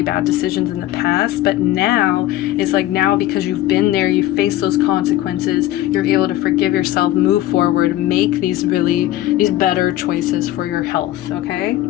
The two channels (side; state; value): right; quieter; 14.2 dB